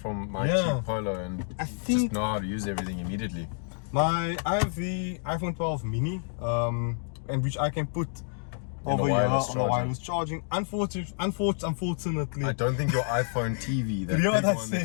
my Yeah. cheap Polo, and I just think know how to use everything immediately. I have the iPhone 12 mini, and which I can put On the over here wireless on the charging. wireless charging. Unfortunately, I don't think your iPhone TV, that you know big what I one that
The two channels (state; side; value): silent; right; 59 dB below the other